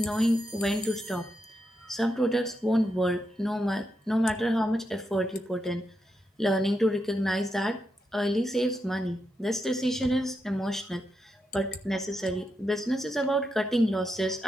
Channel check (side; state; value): both; normal; correlation 0.84